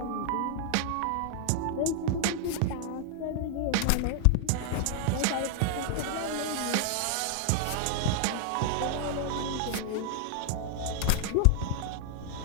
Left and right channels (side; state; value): both; different; correlation 0.00